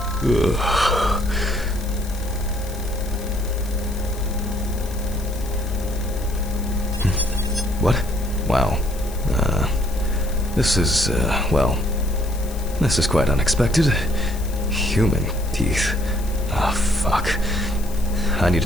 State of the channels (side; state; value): left; noise; hiss, 17 dB below the sound